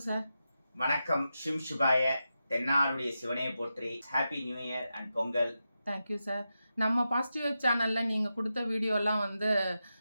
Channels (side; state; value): both; inverted; correlation -0.89